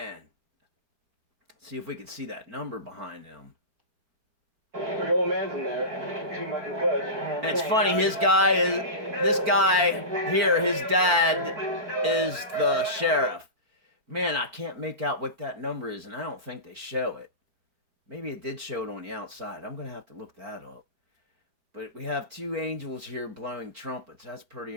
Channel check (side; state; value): left; late; 4.5 ms